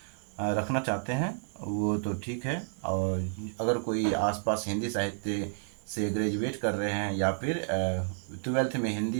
रखना चाहते हैं वो तो ठीक है, और अगर कोई आसपास हिंदी साहित्य से ग्रेजुएट कर रहे हैं या फिर 12th में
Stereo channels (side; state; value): left; silent; digital silence